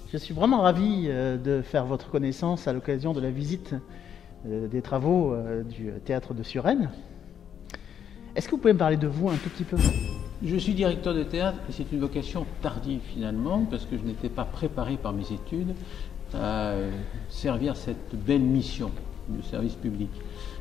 Je suis vraiment ravi de faire votre connaissance à l'occasion de la visite des travaux du théâtre de Suresnes. Est-ce que vous pouvez me parler de vous un tout petit peu? Je suis directeur de théâtre et c'est une vocation tardive finalement parce que je n'étais pas préparé par mes études à servir cette belle mission de service public.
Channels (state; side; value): quieter; right; 8.7 dB